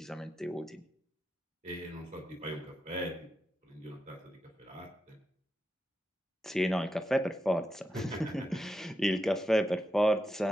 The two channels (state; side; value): normal; both; correlation 0.87